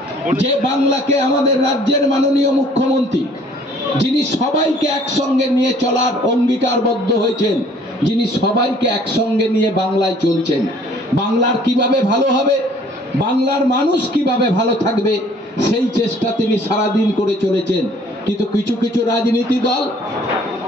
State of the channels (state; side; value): normal; both; correlation 0.56